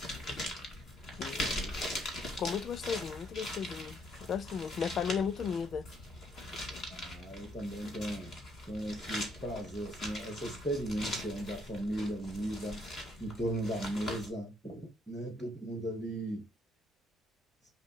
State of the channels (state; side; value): normal; both; correlation 0.69